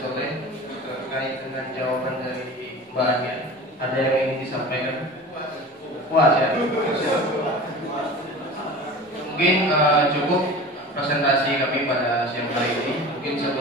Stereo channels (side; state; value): both; normal; correlation 0.36